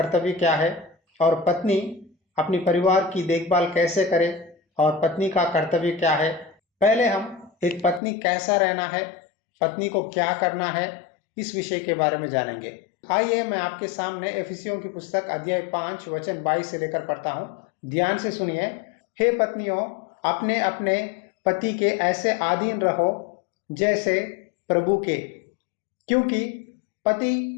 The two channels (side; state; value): right; drops out; at 8.0 s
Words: क्या है और पत्नी अपनी परिवार की देखभाल कैसे करे और पत्नी का कर्तव्य क्या है। पहले हम एक पत्नी कैसा रहना है, पत्नी को क्या करना है, इस विषय के बारे में जानेंगे। आइए मैं आपके सामने एफिसियों की पुस्तक अध्याय 5 वचन 22 से लेकर पढ़ता हूँ। ध्यान से सुनिए। हे पत्नियों, अपने अपने पति के ऐसे अधीन रहो जैसे प्रभु के, क्योंकि पति